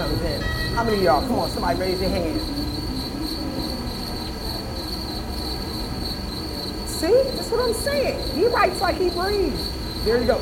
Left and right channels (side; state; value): both; identical; correlation 1.00